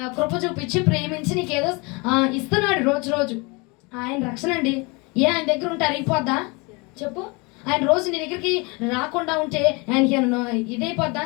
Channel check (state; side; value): quieter; right; 28.2 dB